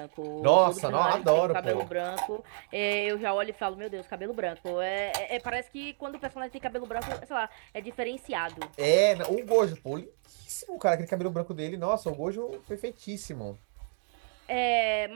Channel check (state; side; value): silent; left; 58 dB below the other